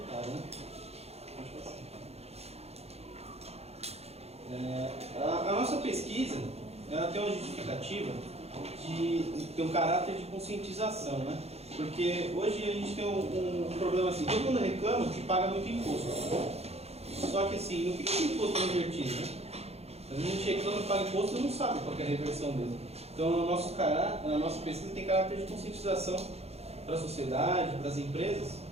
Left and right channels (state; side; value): late; left; 0.30 ms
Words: né? A nossa pesquisa, ela tem uma justificativa de ter um caráter de conscientização, né? Porque hoje a gente tem um problema assim, todo mundo reclama que paga muito imposto. Só que assim, não fica com imposto invertido, né? Às vezes a gente reclama que paga imposto e não sabe qual é a reversão dele. Então a nossa pesquisa tem caráter de conscientização para a sociedade, para as empresas.